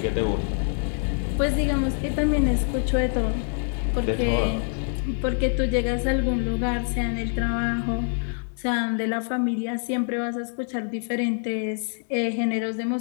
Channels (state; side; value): silent; right; 61 dB below the other